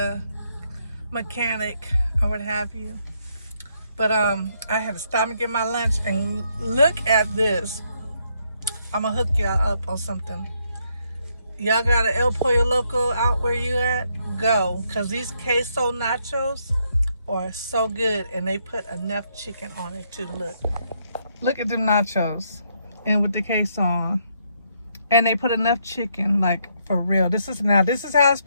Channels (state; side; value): inverted; both; correlation -0.74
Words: mechanic or what have you. But I had to stop and get my lunch, and look at this. I'm gonna hook y'all up on something. Y'all got an El Pollo Loco out where you at? Go, cause these queso nachos are so good, and they put enough chicken on it too. Look at them nachos, and with the queso on, and they put enough chicken, like for real. This is how it's